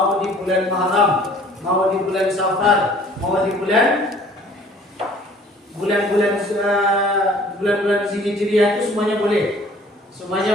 di bulan Muharram, mau di bulan Safar, mau di bulan-bulan Hijriah itu semuanya boleh.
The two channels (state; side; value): normal; both; correlation 0.53